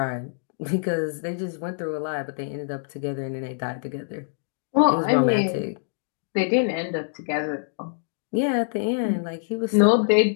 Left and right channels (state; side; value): silent; right; digital silence